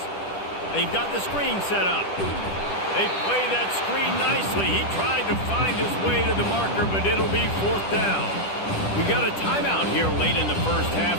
They've got the screen set up. They play that screen nicely. He tried to find his way to the marker, but it'll be 4th down. We got a timeout here late in the 1st half,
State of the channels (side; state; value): right; late; 10 ms